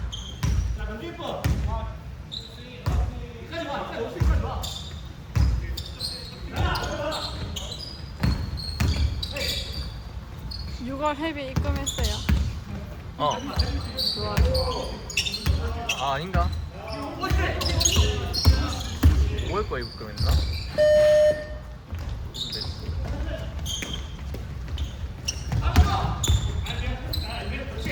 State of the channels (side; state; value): both; identical; correlation 1.00